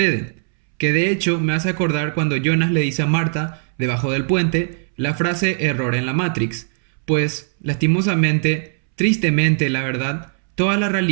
que de hecho me hace acordar cuando Jonas le dice a Marta, debajo del puente, la frase error en la Matrix, pues, lastimosamente, tristemente la verdad, toda la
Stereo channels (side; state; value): left; silent; 66 dB below the other